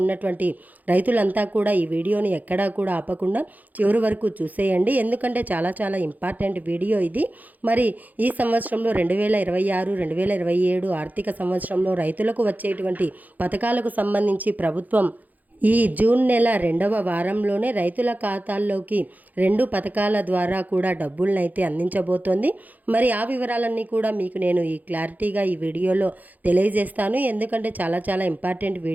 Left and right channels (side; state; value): left; late; 0.081 ms